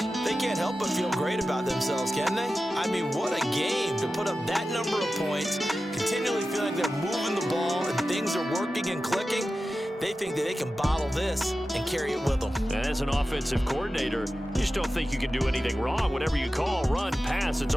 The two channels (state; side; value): normal; both; correlation 0.93